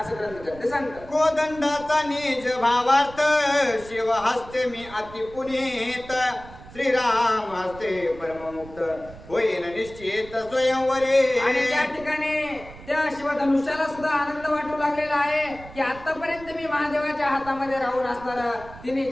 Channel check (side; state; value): right; noise; rumble, 18 dB below the sound